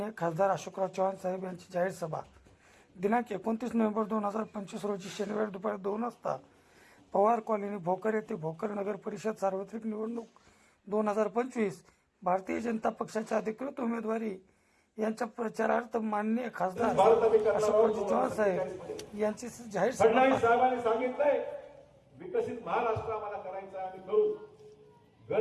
खासदार अशोकराव चव्हाण साहेब यांची जाहीर सभा दिनांक 29 नोव्हेंबर 2025 रोजी शनिवारी दुपारी 2 वाजता पवार कॉलनी भोकर येथे भोकर नगर परिषद सार्वत्रिक निवडणूक 2025 भारतीय जनता पक्षाचे अधिकृत उमेदवारी यांच्या प्रचारार्थ माननीय खासदार अशोकराव चव्हाण साहेब यांची जाहीर फडणवीस साहेबांनी सांगितलंय विकसित महाराष्ट्र आम्हाला करायचा आहे, आम्ही करू. घर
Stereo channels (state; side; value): identical; both; correlation 1.00